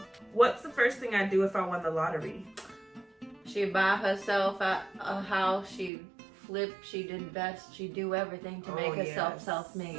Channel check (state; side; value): drops out; left; at 5.9 s